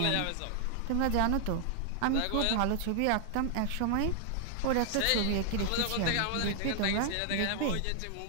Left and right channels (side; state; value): both; different; correlation 0.00